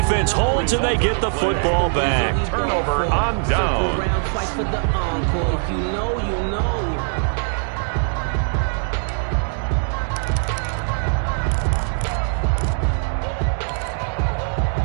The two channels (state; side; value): silent; left; digital silence